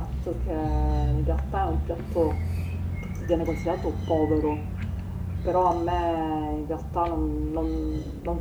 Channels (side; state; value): both; identical; correlation 1.00